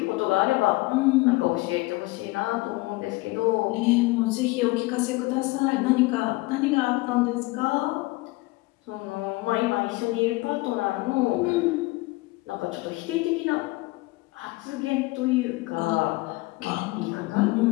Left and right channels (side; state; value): right; quieter; 22.2 dB